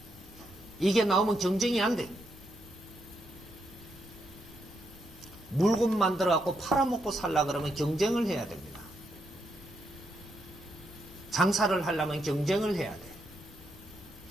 이게 나오면 경쟁이 안 돼. 물건 만들어갖고 팔아먹고 살라 그러면 경쟁을 해야 됩니다. 장사를 하려면 경쟁을 해야 돼.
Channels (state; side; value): normal; both; correlation 0.79